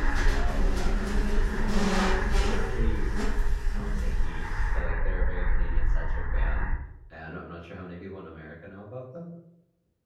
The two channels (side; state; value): both; identical; correlation 1.00